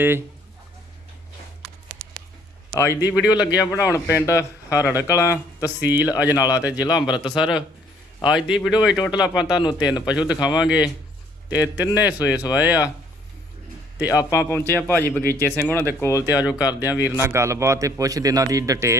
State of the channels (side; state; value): both; normal; correlation 0.61